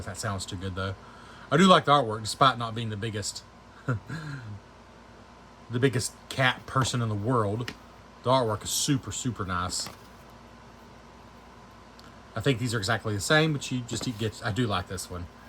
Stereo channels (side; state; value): both; identical; correlation 1.00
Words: if that sounds too good though. I do like the artwork, despite not being the biggest, the biggest cat person in the world. The artwork is super, super nice. I think these are exactly the same, but you just get. I do like this one.